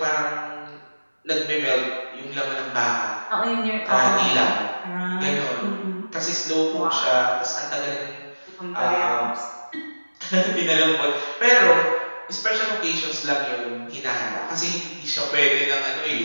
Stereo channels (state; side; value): inverted; both; correlation -1.00